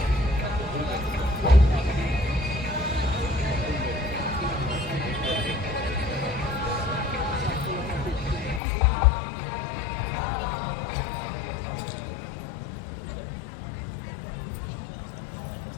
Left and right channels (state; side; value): drops out; right; at 8.6 s